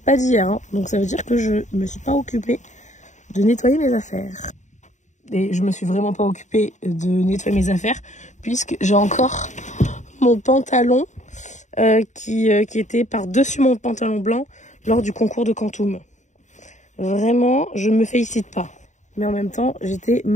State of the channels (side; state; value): right; late; 0.35 ms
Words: pas d'hier. Hein. Donc ça veut dire que je me suis pas occupée de nettoyer mes affaires. Et je me suis vraiment pas occupée de nettoyer mes affaires puisque j'ai encore mon pantalon qui était par-dessus mon pantalon blanc lors du concours de Quantum. Vraiment, je me félicite pas. Mais en même temps, j'étais